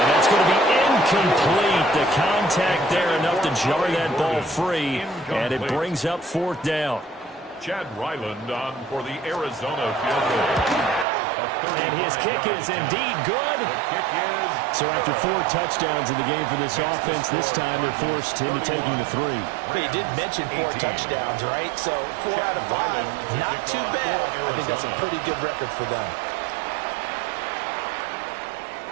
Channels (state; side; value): drops out; left; at 11.1 s